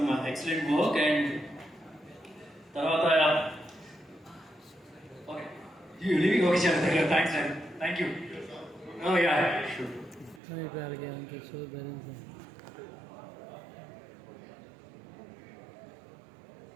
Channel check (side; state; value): left; drops out; at 10.4 s